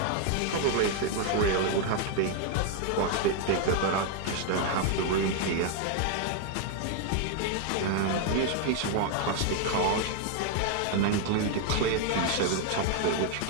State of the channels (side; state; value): both; different; correlation 0.00